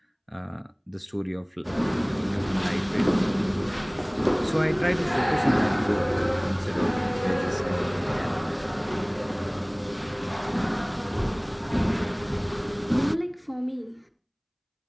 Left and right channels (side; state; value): both; identical; correlation 1.00